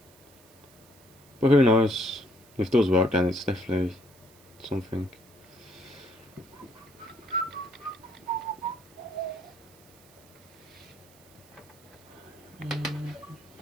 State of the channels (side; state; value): right; noise; hiss, 26 dB below the sound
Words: But who knows? If it does work, then it's definitely something.